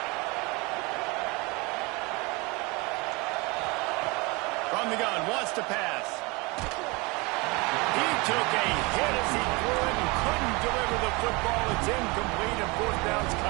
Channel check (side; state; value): left; quieter; 26.4 dB